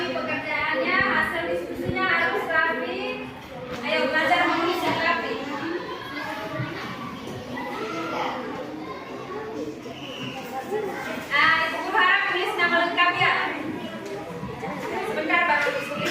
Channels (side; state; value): both; identical; correlation 1.00